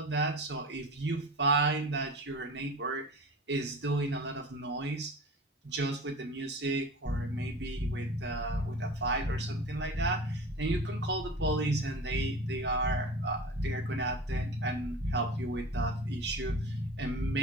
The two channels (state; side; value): normal; both; correlation 0.36